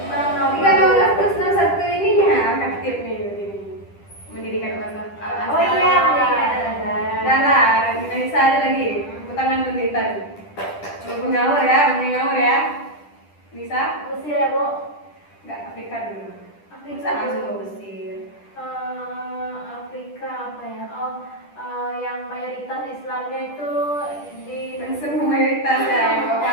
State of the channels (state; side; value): late; right; 10 ms